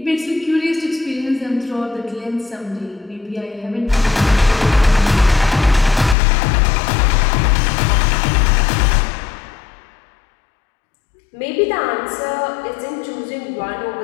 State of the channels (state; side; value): drops out; right; at 6.2 s